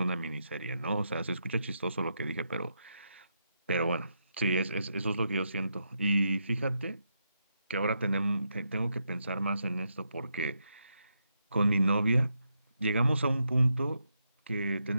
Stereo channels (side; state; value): both; inverted; correlation -0.82